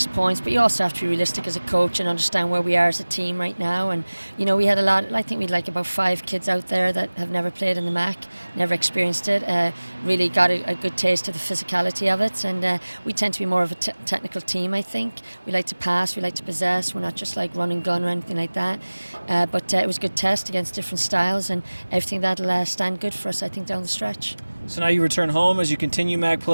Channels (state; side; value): inverted; both; correlation -1.00